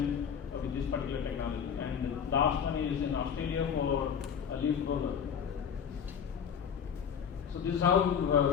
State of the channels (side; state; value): right; quieter; 7.5 dB